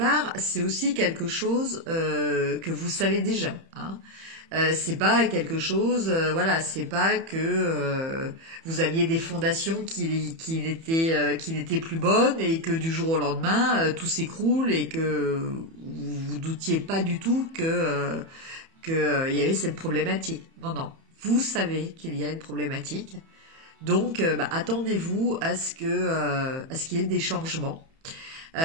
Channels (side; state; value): left; late; 30 ms